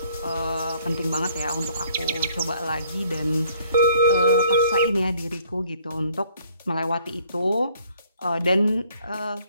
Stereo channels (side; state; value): both; inverted; correlation -0.62